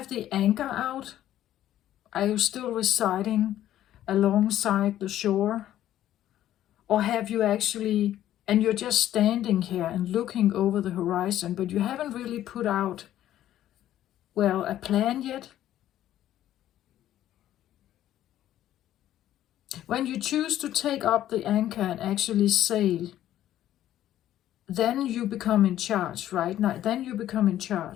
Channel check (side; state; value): right; quieter; 12.5 dB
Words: the anchor out? Are you still residing alongside the shore? Or have you actually, and you're just standing here and looking over the horizon, but you haven't really put out, well, a plan yet? When you choose to take up the anchor and actually sail, then you become in charge, right? Now, then you become in